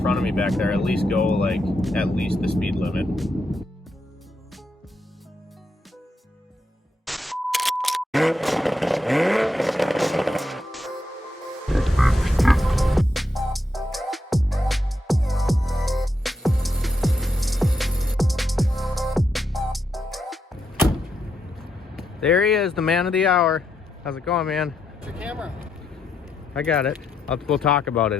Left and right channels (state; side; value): normal; both; correlation 0.81